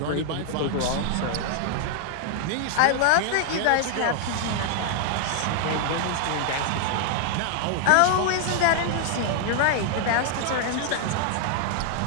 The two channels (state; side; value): different; both; correlation 0.00